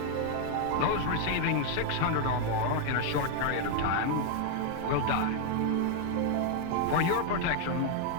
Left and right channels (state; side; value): different; both; correlation 0.00